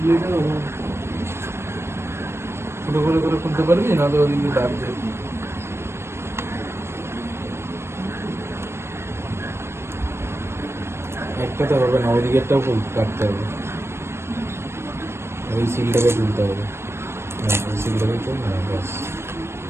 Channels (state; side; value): late; left; 0.12 ms